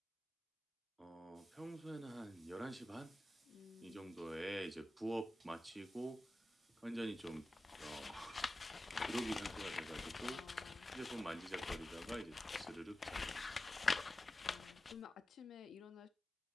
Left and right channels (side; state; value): both; normal; correlation 0.94